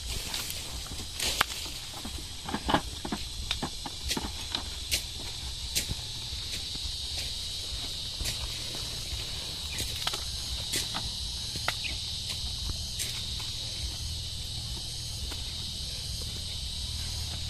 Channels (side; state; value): both; identical; correlation 1.00